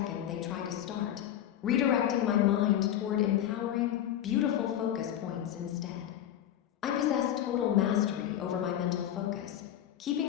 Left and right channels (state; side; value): quieter; right; 11.2 dB